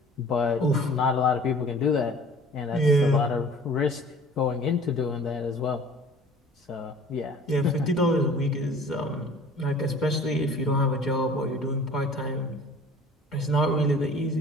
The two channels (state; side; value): normal; both; correlation 0.47